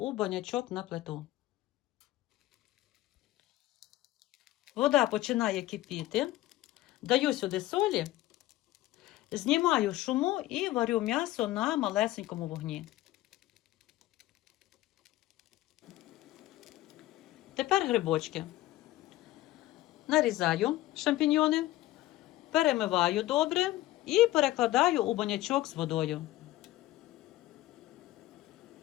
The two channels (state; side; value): quieter; right; 16.1 dB